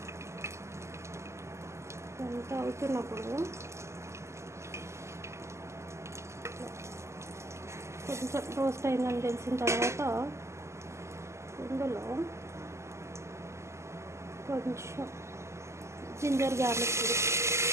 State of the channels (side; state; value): left; late; 0.13 ms